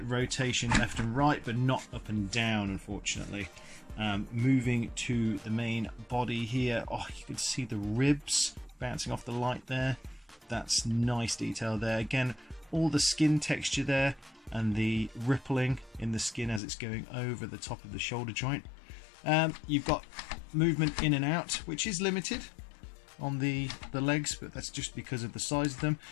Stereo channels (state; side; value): drops out; right; at 16.6 s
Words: rotation left and right, but not up and down, unfortunately. Moving to the main body here, oh, you can see the ribs bouncing off the light there. That's nice detail there. Again, all the skin texture there and the rippling in the skin as it's going over the top of the shoulder joint. You've got movement in and out, which is limited on the legs, but that's just because of the size of them.